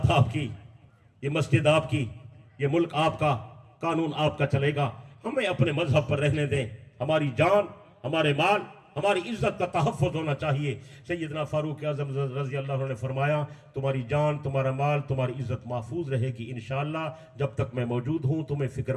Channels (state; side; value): identical; both; correlation 1.00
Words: آپ کی، یہ مسجد آپ کی، یہ ملک آپ کا، قانون آپ کا چلے گا. ہمیں اپنے مذہب پر رہنے دیں. ہماری جان، ہمارے مال، ہماری عزت کا تحفظ ہونا چاہیے. سیدنا فاروق اعظم رضی اللہ عنہ نے فرمایا تمہاری جان، تمہارا مال، تمہاری عزت محفوظ رہے گی انشاءاللہ. جب تک میں موجود ہوں تمہیں فکر